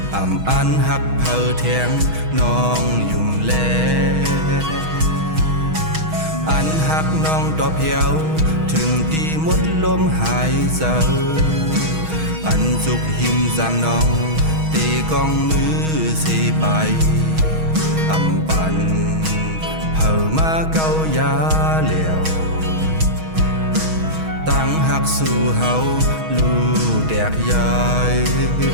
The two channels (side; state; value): left; late; 6.3 ms